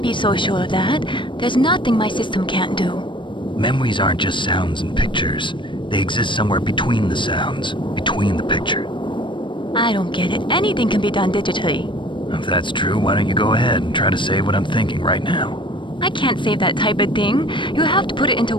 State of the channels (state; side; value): late; right; 0.24 ms